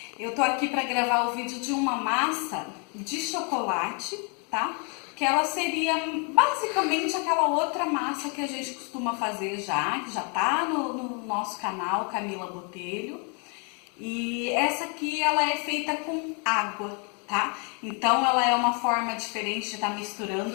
Eu tô aqui para gravar o vídeo de uma massa de chocolate, tá? Que ela seria basicamente aquela outra massa que a gente costuma fazer que já tá no nosso canal, Camila Botelho. E essa aqui, ela é feita com água, tá? Então, ela é uma forma diferente de estar misturando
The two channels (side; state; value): right; quieter; 36.7 dB